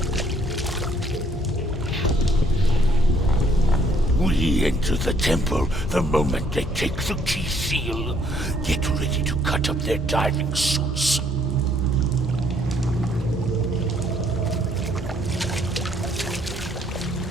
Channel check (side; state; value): both; normal; correlation 0.66